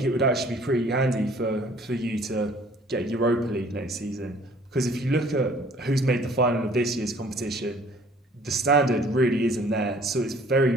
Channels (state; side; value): normal; both; correlation 0.55